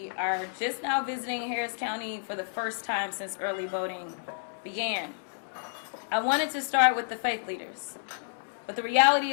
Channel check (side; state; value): right; silent; digital silence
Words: are just now visiting Harris County for the first time since early voting began. I wanted to start with the faith leaders. But the reality